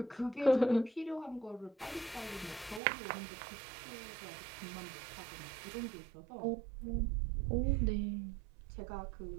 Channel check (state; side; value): drops out; left; at 2.8 s